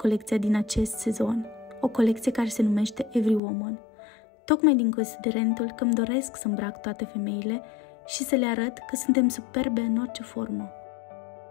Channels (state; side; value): drops out; right; at 3.4 s